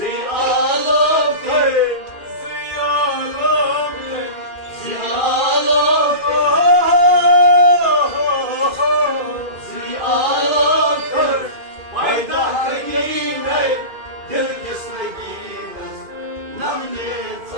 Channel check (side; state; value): left; late; 2.4 ms